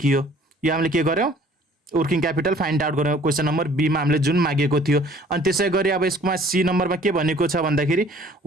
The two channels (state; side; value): normal; both; correlation 0.54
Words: यो हामीले के गर्यौँ वर्किङ क्यापिटल फाइन्ड आउट गर्यौँ क्वेसन नम्बर B मा हामीले जुन मागेको थियो। अनि त्यसै गरी अब यसमा C नम्बरमा के भनेको छ भन्दाखेरि